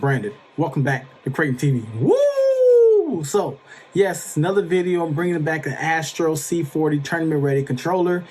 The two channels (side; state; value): both; identical; correlation 1.00